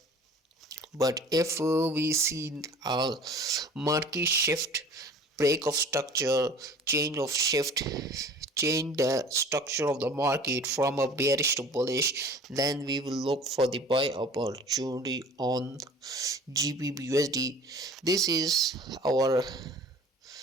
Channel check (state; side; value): normal; both; correlation 0.45